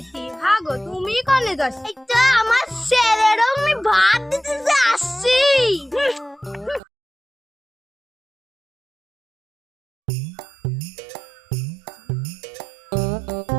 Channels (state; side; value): drops out; left; at 6.8 s